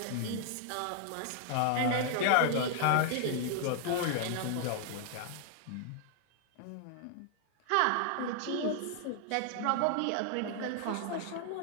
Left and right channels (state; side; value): different; both; correlation 0.00